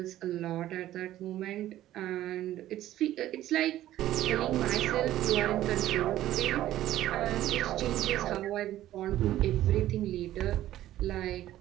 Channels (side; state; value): left; quieter; 13.7 dB